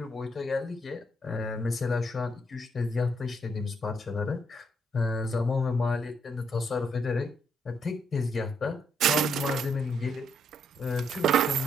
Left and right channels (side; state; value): both; normal; correlation 0.73